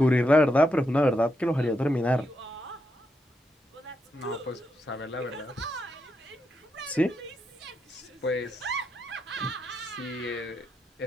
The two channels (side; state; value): both; normal; correlation 0.82